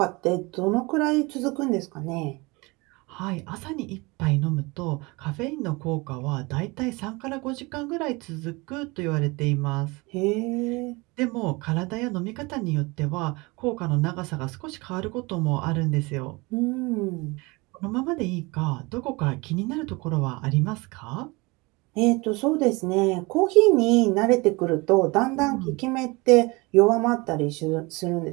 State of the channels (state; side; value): quieter; left; 25.2 dB